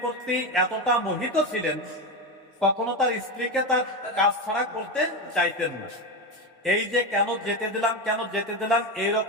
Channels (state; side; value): normal; both; correlation 0.15